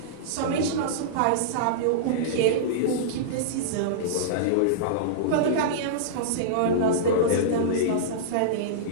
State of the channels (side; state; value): both; different; correlation -0.03